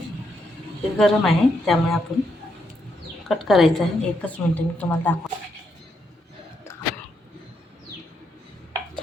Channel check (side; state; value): both; normal; correlation 0.79